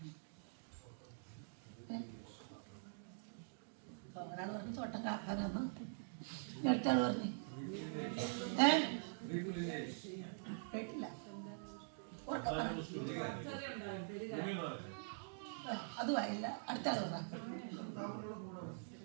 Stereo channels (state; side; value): silent; left; digital silence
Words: ഒരാൾ പറഞ്ഞു തോട്ടം കാക്കാനാന്ന്, അടുത്താൾ പറഞ്ഞു കേട്ടില്ല. അതുമായില്ല. അടുത്താൾ പറ.